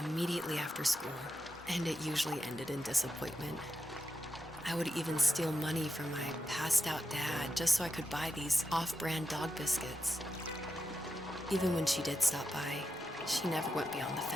after school, and it usually ended in disappointment. I would even steal money from my passed out dad just so I could buy these off-brand dog biscuits. Even when she did stop by, she never went beyond the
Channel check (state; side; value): normal; both; correlation 0.88